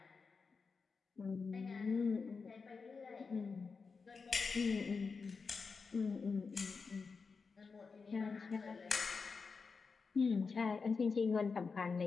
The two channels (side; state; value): right; quieter; 4.9 dB